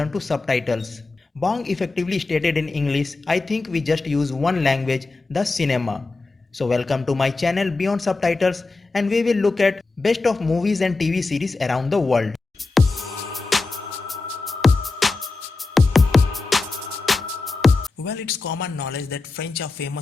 to subtitles. Bong effectively stated in English, "I think we just use one language, the cinema." So welcome to my channel Beyond Subtitles, and we will look at best of movies and TV series around the world. Well, it's common knowledge that French are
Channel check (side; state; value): right; quieter; 3.6 dB